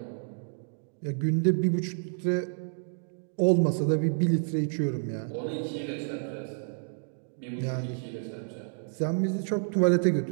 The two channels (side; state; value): left; silent; digital silence